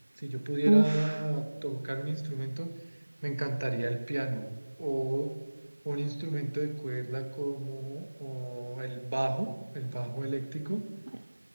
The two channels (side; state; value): both; inverted; correlation -1.00